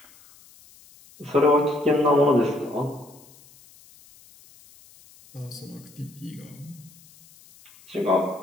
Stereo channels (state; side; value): noise; left; hiss, 25 dB below the sound